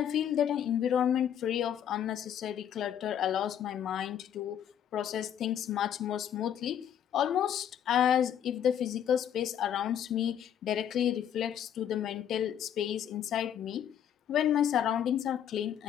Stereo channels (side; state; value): right; quieter; 9.6 dB